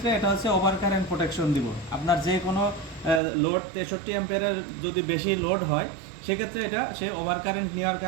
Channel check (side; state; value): left; drops out; at 3.2 s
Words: এটা হচ্ছে ওভার কারেন্ট প্রোটেকশন দিব। আপনার যে কোনো লোড 63 অ্যাম্পিয়ারের যদি বেশি লোড হয়, সেক্ষেত্রে এটা সে ওভার কারেন্ট নেওয়ার